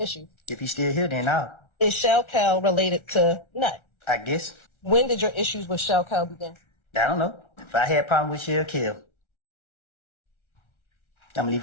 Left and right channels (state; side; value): late; right; 1.4 ms